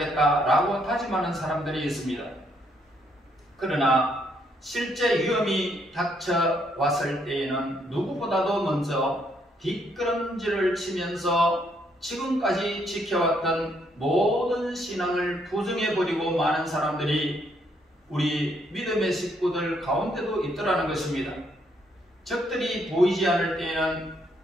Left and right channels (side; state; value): both; normal; correlation 0.72